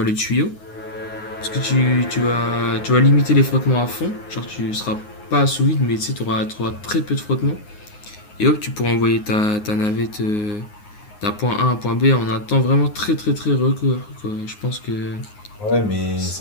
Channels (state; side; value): late; right; 9.6 ms